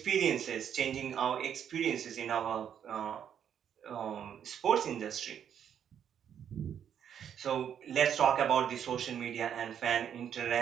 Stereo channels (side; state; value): left; quieter; 8.8 dB